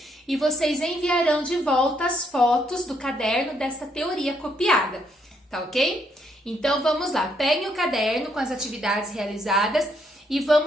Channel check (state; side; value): normal; both; correlation 0.73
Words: e vocês enviarão de volta as fotos do caderno dessa teoria copiada, tá ok? Então vamos lá, peguem o caderno com as atividades realizadas e